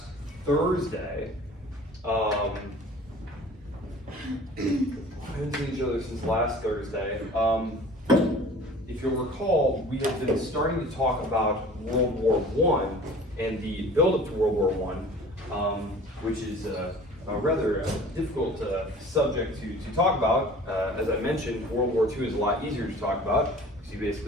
Thursday. If you'll recall, we have been starting to talk about World War I and the build-up to World War I, which is a rather difficult subject to talk about. As I mentioned, World War II is a lot easier to talk about, because you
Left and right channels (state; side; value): normal; both; correlation 0.45